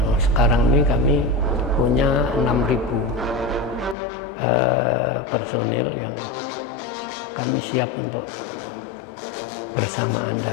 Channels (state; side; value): drops out; right; at 4.0 s